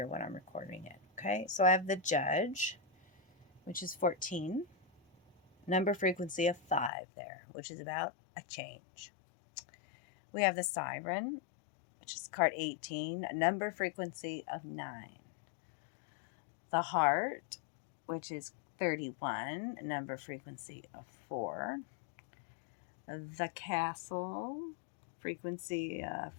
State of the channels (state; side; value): drops out; right; at 6.9 s